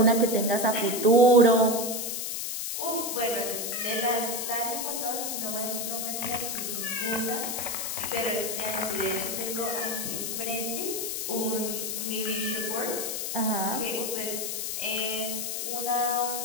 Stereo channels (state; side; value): noise; left; hiss, 3 dB below the sound